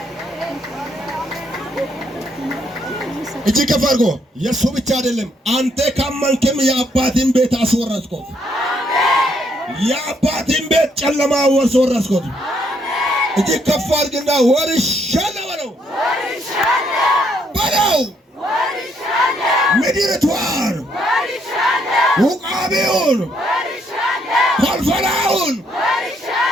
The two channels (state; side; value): normal; both; correlation 0.72